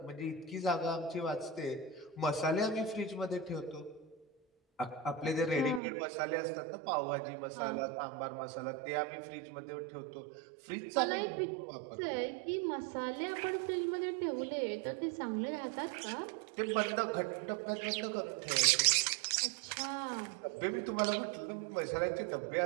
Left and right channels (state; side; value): drops out; left; at 5.8 s